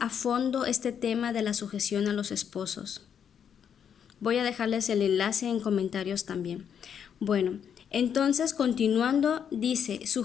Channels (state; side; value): quieter; right; 8.1 dB